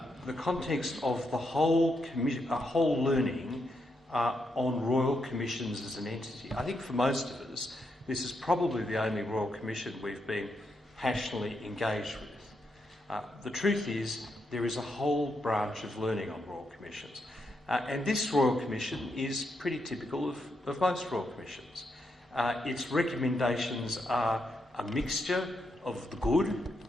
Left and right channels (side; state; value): both; normal; correlation 0.81